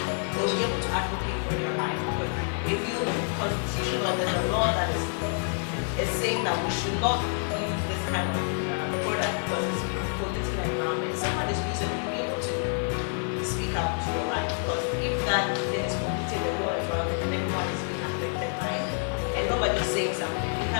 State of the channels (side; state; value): right; silent; 56 dB below the other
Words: they'll be able to advocate for their rights. Because if you constitution or there's a law that is saying that we should not use this kind of product because it's polluting the environment, someone is using it, you'll be able to speak up to your right. Because if that thing is polluting the whole environment and everyone is being affected by it, and nobody is saying something, you